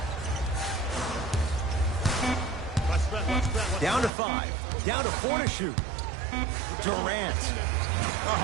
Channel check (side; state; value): left; drops out; at 4.1 s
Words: Down to 5. Down to 4 to shoot. Durant.